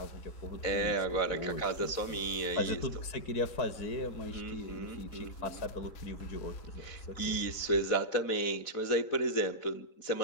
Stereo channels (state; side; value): late; right; 4.1 ms